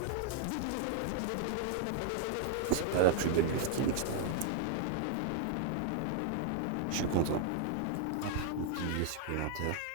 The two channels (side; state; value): both; different; correlation 0.00